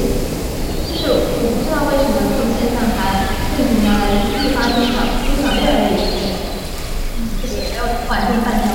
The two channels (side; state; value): both; identical; correlation 1.00